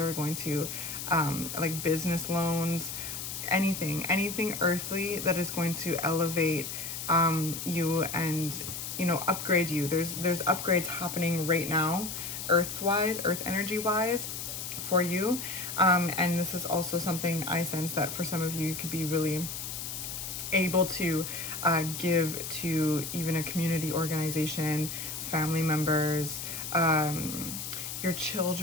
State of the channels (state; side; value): noise; left; hiss, 6 dB below the sound